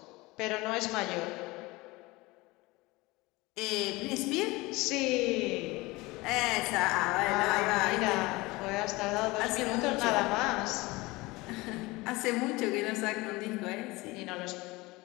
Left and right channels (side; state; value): right; quieter; 22.1 dB